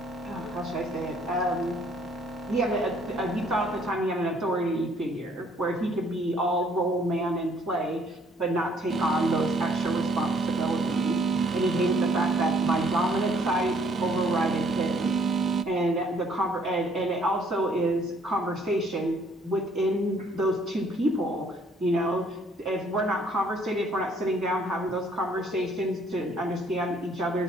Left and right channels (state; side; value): normal; both; correlation 0.63